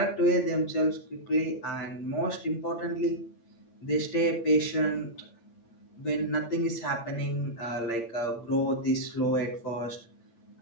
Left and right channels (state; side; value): late; right; 8.6 ms